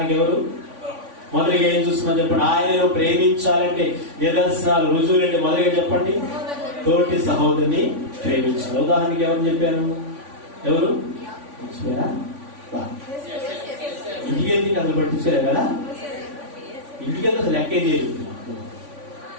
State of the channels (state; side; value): late; left; 3.5 ms